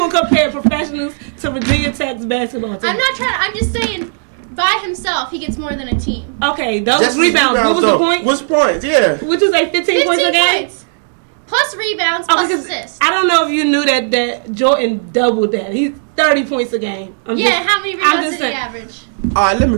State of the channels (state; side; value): silent; left; 70 dB below the other